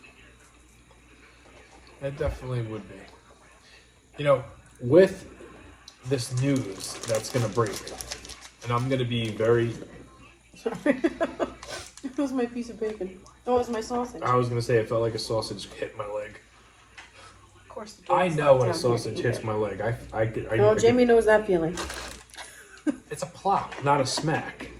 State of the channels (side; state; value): both; identical; correlation 1.00